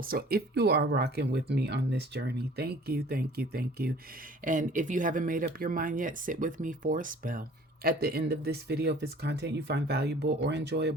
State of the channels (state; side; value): normal; both; correlation 0.50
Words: So if you are rocking with me on this journey, thank you, thank you, thank you. And if you haven't made up your mind yet, sit with me for a spell. At the end of this video, if it's content you find valuable or